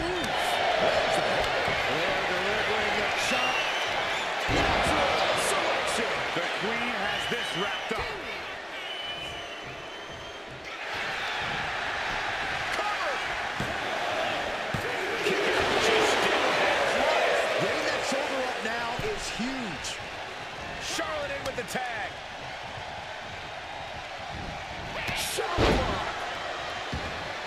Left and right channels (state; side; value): identical; both; correlation 1.00